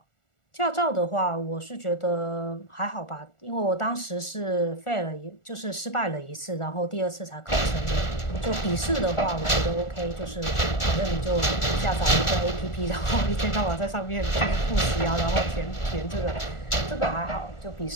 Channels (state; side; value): late; right; 1.4 ms